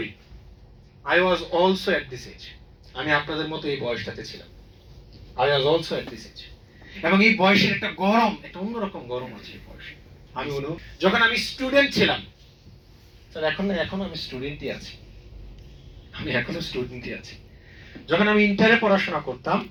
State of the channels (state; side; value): identical; both; correlation 1.00